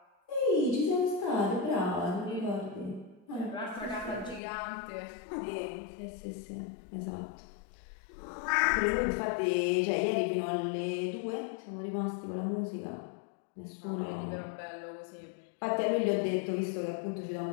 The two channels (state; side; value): drops out; right; at 4.4 s